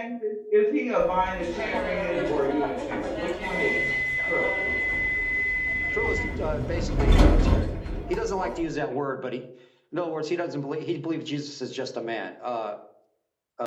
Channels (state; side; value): identical; both; correlation 1.00